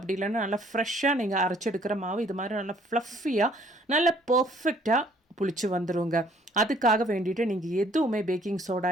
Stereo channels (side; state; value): both; normal; correlation 0.60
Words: இல்லைன்னா நல்லா ஃப்ரெஷ்ஷாக நீங்கள் அரைச்சி எடுக்கிற மாவு இது மாதிரி நல்லா ஃப்ளஃபியாக நல்லா பர்ஃபெக்டாக புளிச்சு வந்துடுங்க. அதுக்காக வேண்டிட்டு நீங்கள் எதுவுமே பேக்கிங் சோடா,